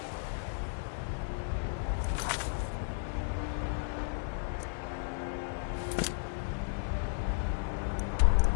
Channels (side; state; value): right; silent; digital silence